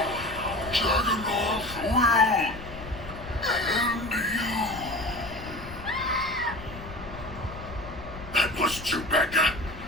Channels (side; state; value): left; noise; rumble, 13 dB below the sound